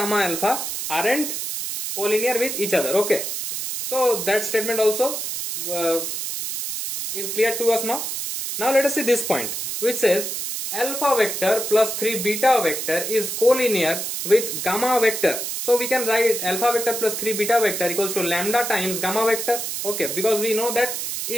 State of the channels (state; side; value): noise; right; hiss, 4 dB below the sound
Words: alpha aren't collinear with each other. Okay, so that statement also is clear to us now. Now let us see this point which says alpha vector plus 3 beta vector is collinear with gamma vector. So we can write alpha vector plus 3 beta vector equals to lambda times gamma vector. Okay, because we know that